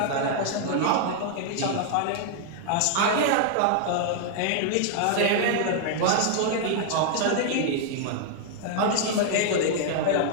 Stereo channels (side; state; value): both; different; correlation 0.00